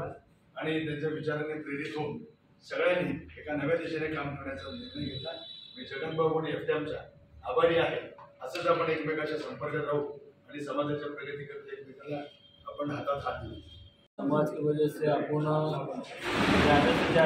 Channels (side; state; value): both; identical; correlation 1.00